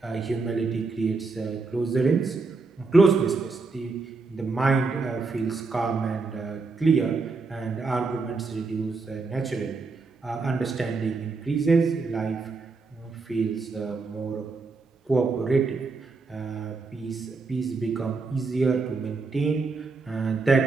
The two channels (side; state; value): left; quieter; 4.1 dB